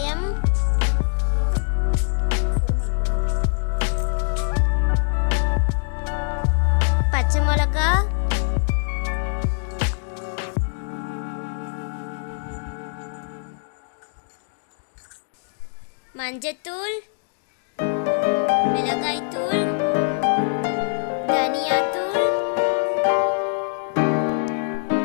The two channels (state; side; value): silent; right; 63 dB below the other